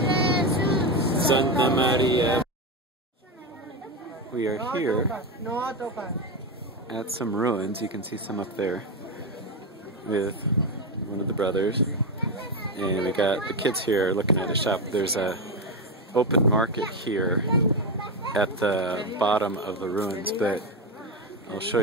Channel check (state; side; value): normal; both; correlation 0.12